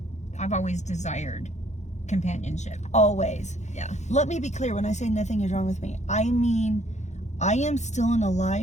I've always desired companionship. Always. Yeah. Let me be clear, when I say nothing is wrong with me, I mean, I am still an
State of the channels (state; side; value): late; right; 0.33 ms